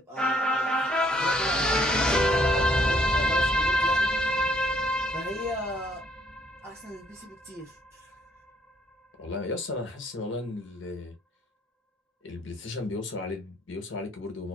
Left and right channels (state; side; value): normal; both; correlation 0.67